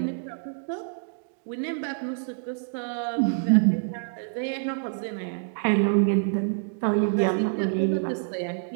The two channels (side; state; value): left; silent; digital silence